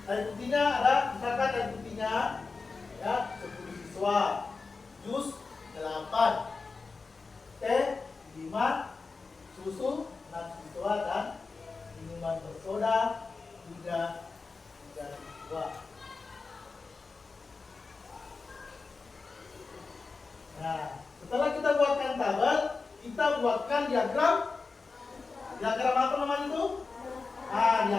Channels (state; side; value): quieter; right; 4.3 dB